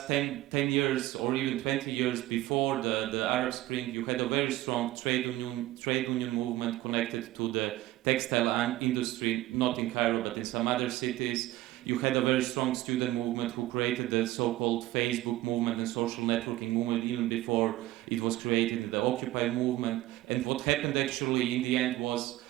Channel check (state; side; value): quieter; left; 16.3 dB